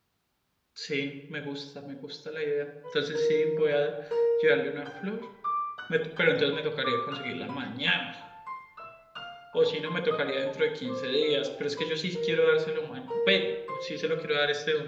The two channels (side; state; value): both; identical; correlation 1.00